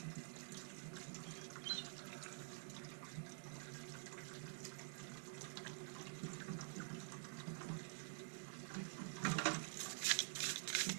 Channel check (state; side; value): silent; left; digital silence